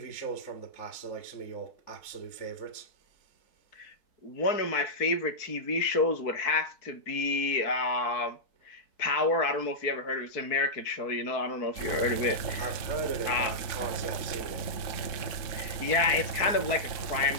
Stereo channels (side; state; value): right; late; 3.7 ms